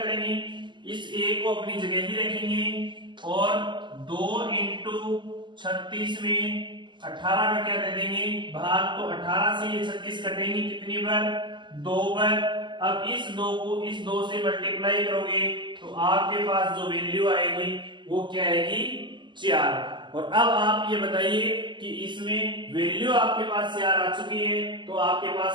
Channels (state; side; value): late; left; 0.22 ms